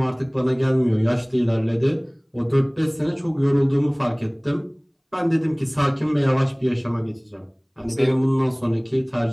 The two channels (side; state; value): both; identical; correlation 1.00